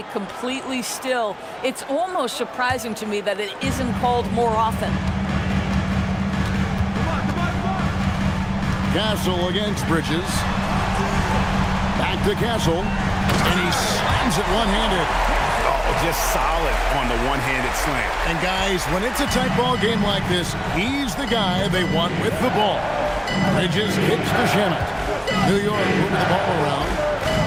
completely still. It's almost surprising to me that it isn't called more often. Castle against Bridges. Back to Castle. And he slams it one-handed. Oh, just solid on the one-handed slam. And guys, when it's a tight ball game like this, he's the guy they want with the ball. Bridges kicks to Shamet. New York moving the ball around.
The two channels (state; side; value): identical; both; correlation 1.00